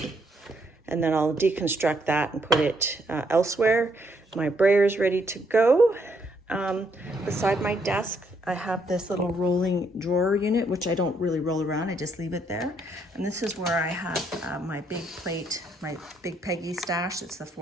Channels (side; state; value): both; normal; correlation 0.72